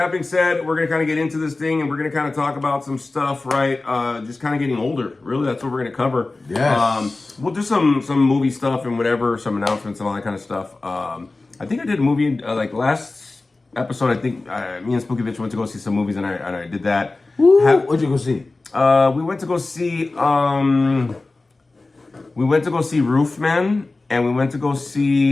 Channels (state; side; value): quieter; right; 3.3 dB